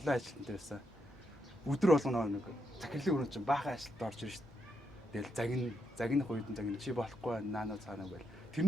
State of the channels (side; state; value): both; normal; correlation 0.81